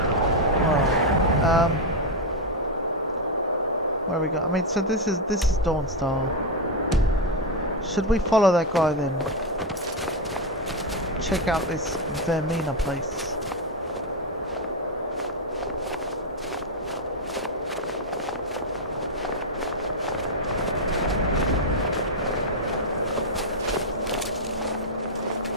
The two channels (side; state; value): both; normal; correlation 0.04